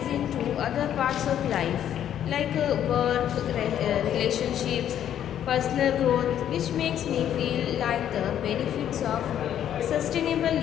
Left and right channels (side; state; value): right; quieter; 10.3 dB